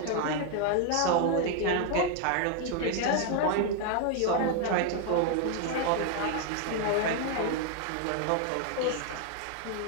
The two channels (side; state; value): both; different; correlation 0.00